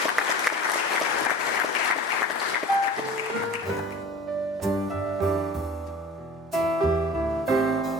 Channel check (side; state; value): both; normal; correlation 0.41